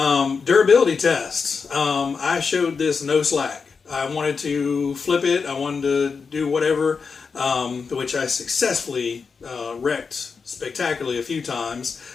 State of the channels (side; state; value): right; quieter; 5.3 dB